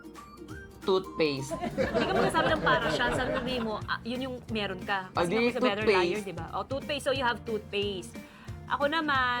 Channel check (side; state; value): both; identical; correlation 1.00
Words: toothpaste. Hindi ka magsasabi ng para siya. Sabi mo, yun yung meron ka. Ah, di, Kasi better toothpaste. liar, di ba? Oh, toothpaste. So, you have toothpaste. Ako